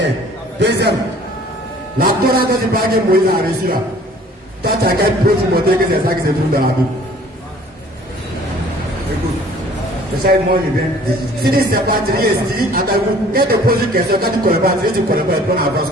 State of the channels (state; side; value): normal; both; correlation 0.53